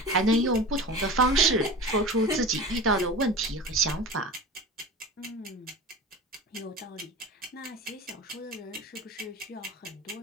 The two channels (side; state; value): both; normal; correlation 0.33